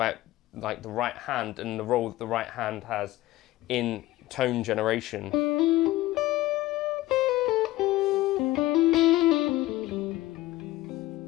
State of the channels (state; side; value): quieter; right; 17.2 dB